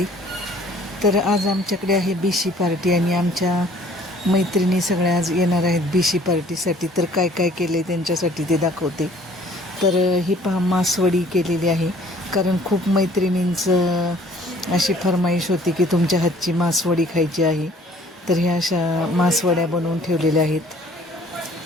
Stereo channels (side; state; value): both; normal; correlation 0.55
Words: तर आज आमच्याकडे आहे बीशी पार्टी आणि आमच्या मैत्रिणी सगळ्या आज येणार आहेत बीशी पार्टीसाठी. तर काय काय केलं आहे त्यांच्यासाठी ते दाखवते. तर ही पहा, मासवडी केलेली आहे, कारण खूप मैत्रिणींचं अशी फरमाईश होती की तुमच्या हातची मासवडी खायची आहे. तर ह्या अशा मासवड्या बनवून ठेवलेल्या आहेत.